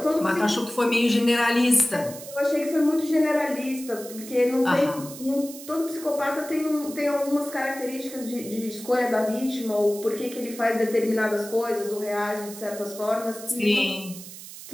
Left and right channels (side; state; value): right; noise; hiss, 14 dB below the sound